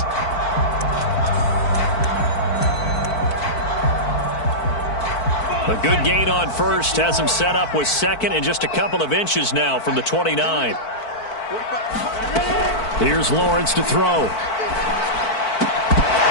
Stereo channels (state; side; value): late; right; 4.5 ms